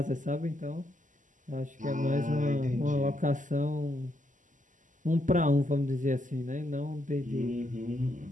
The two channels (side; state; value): left; late; 0.37 ms